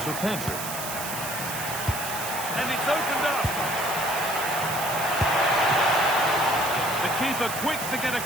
Pedri. And it's opened up. Keeper quick to get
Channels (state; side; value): noise; right; hiss, 6 dB below the sound